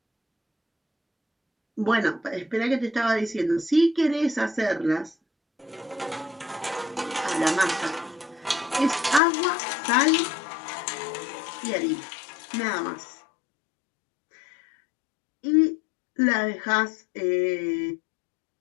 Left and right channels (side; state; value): right; drops out; at 9.2 s